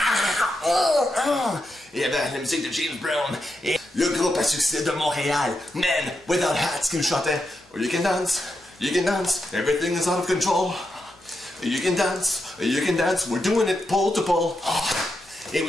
Il y avait la musique de James Brown et le groupe à succès de Montréal, Men Without Hats, qui nous chantait You can dance, everything is out of control. You can dance, we're doing it pole to pole. Et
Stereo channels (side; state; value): both; normal; correlation 0.85